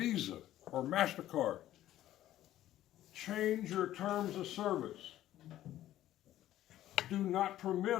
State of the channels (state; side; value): quieter; right; 13.4 dB